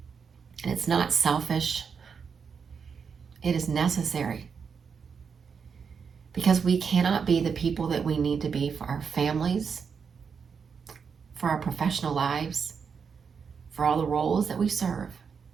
And it's not selfish. It is necessary. Because we cannot be the people that we need to be for our families, for our professional lives, for all the roles that we serve,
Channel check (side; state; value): left; quieter; 6.1 dB